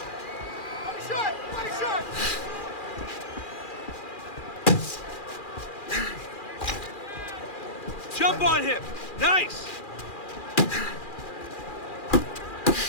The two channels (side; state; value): right; late; 2.4 ms